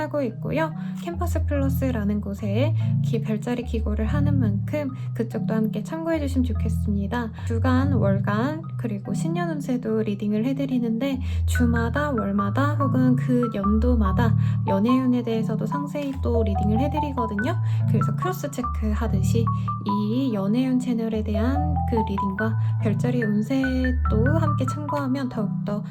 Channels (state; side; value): identical; both; correlation 1.00